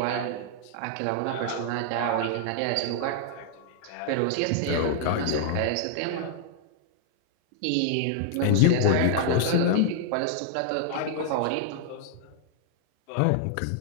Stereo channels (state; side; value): different; both; correlation -0.01